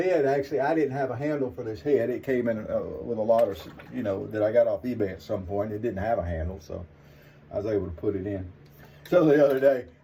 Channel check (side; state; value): both; identical; correlation 1.00